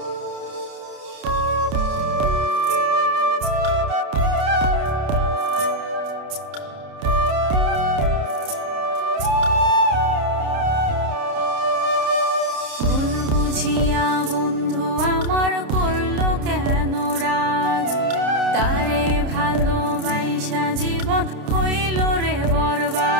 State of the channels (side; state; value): left; late; 29 ms